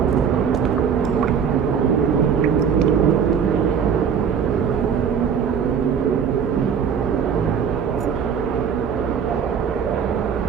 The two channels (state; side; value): quieter; left; 7.2 dB